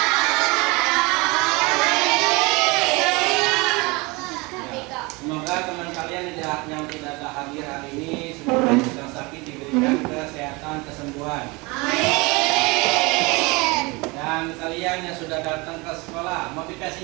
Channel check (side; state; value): left; quieter; 25.7 dB